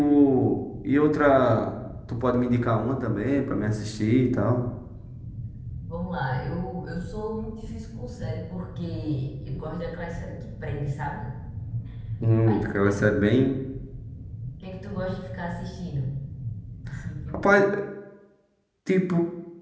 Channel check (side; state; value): both; identical; correlation 1.00